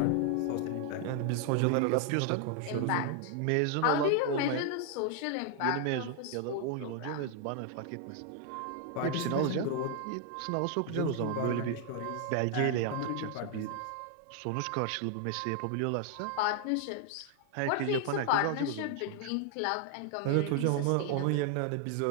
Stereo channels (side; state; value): both; different; correlation 0.00